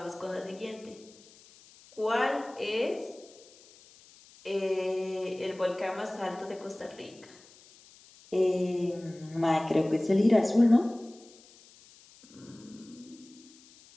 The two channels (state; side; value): noise; left; hiss, 24 dB below the sound